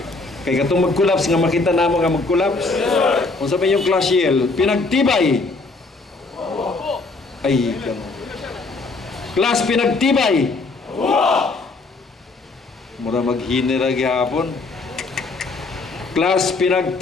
Kay katong mag-collapse nga makita namo nga mag-collapse. Kung sabi yung class yell, Pinagtibay. Ay, class Pinagtibay. Mura maghinira gihapon. Class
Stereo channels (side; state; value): right; quieter; 3.6 dB